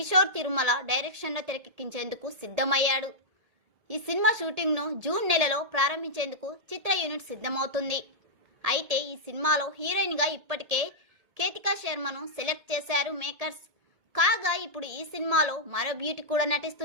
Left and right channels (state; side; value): late; left; 1.8 ms